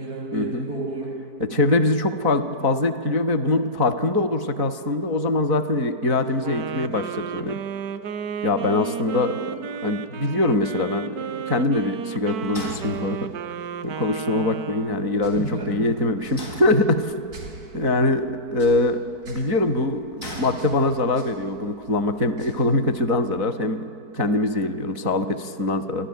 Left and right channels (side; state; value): left; late; 4.6 ms